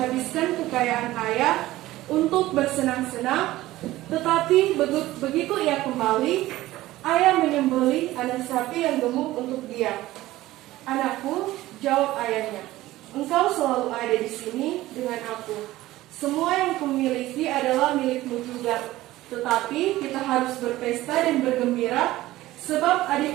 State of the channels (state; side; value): quieter; left; 16.6 dB